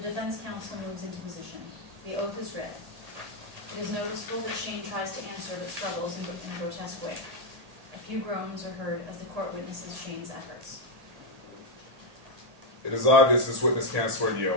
counsel moves into position. The oath is read. It is noticeable that Shane tries to answer but struggles in a grotesque way. A few groans are heard as the court witnesses Shane's efforts. It is obvious this witness can't swear the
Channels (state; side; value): late; left; 1.8 ms